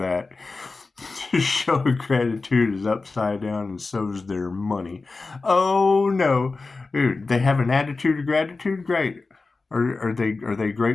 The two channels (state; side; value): quieter; right; 3.8 dB